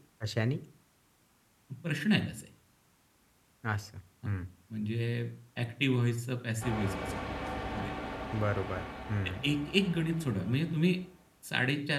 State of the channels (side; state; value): both; identical; correlation 1.00